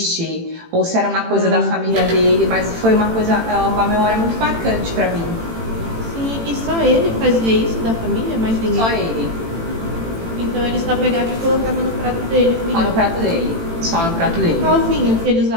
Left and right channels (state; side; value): late; left; 18 ms